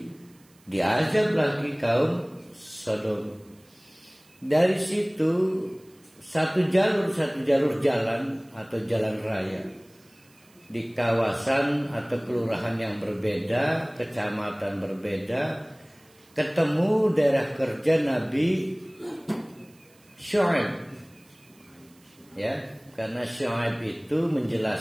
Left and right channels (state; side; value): noise; right; hiss, 30 dB below the sound